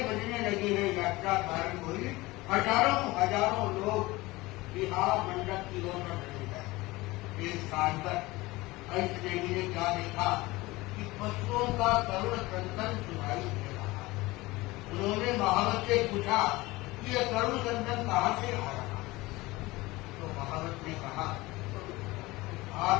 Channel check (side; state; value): right; quieter; 20.6 dB